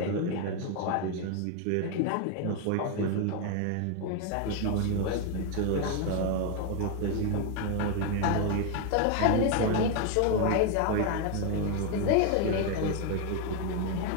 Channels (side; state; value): both; different; correlation 0.01